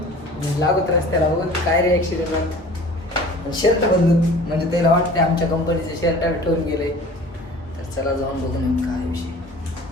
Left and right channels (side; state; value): both; normal; correlation 0.44